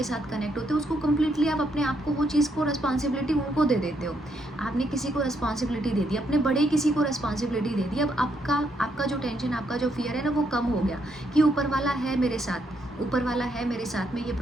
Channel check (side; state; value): both; normal; correlation 0.75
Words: साथ कनेक्ट होते हो उसको कम्प्लीटली आप अपने आप को वो चीज़ को रिस्पॉन्सिबिलिटी उनको दे देते हो। आपने किसी को रिस्पॉन्सिबिलिटी दे दी, अपने बड़े किसी को रिस्पॉन्सिबिलिटी दे दी, अब आपका जो टेंशन, आपका जो फियर है ना वो कम हो गया कि ऊपर वाला है मेरे साथ, ऊपर वाला है मेरे साथ में ये